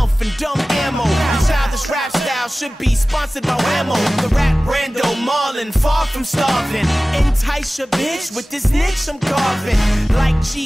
and dumb ammo. The childish rap style should be sponsored by Whammo. The rap Brando Marlin, far from starving. Entice your bitch with this niche I'm carving. Like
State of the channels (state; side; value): normal; both; correlation 0.97